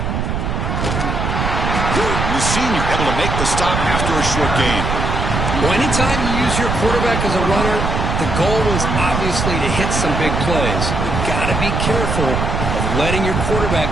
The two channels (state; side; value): noise; right; rumble, 1 dB below the sound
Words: And the senior able to make the stop after a short gain. Well, anytime you use your quarterback as a runner, the goal is obviously to hit some big plays. You've got to be careful of letting your quarterback